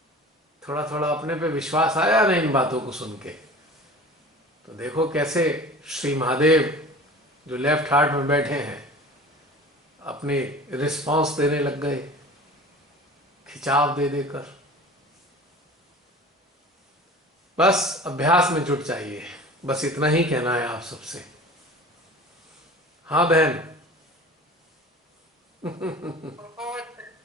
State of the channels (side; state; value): both; normal; correlation 0.40